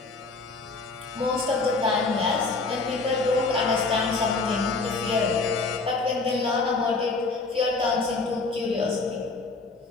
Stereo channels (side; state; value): right; quieter; 3.8 dB